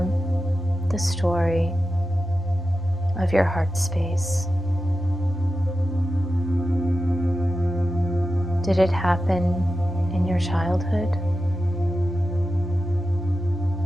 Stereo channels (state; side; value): normal; both; correlation 0.92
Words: the story of your heart space. Did it happen in your childhood?